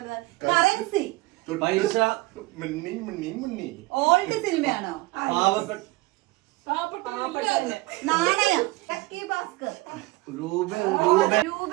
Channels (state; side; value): quieter; left; 21.1 dB